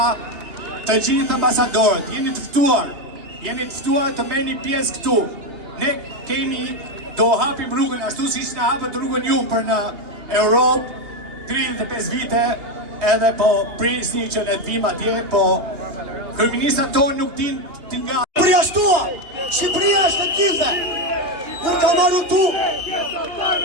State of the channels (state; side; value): late; left; 2.8 ms